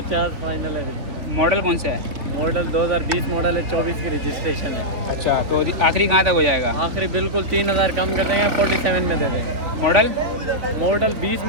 फाइनल है। मॉडल कौन सा है? मॉडल 2020 मॉडल है, 24 की रजिस्ट्रेशन है। अच्छा, तो आखिरी कहाँ तक हो जाएगा? आखिरी बिल्कुल 3,000 कम कर देंगे, 47 में दे देंगे। मॉडल 20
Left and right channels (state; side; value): late; left; 3.4 ms